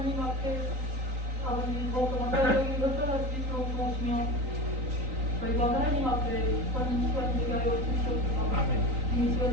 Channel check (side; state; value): left; late; 3.9 ms